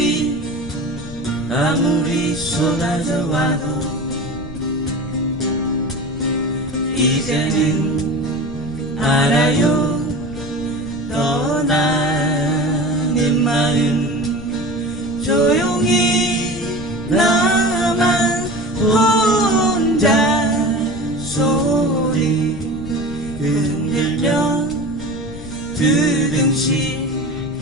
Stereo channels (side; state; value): left; noise; rumble, 14 dB below the sound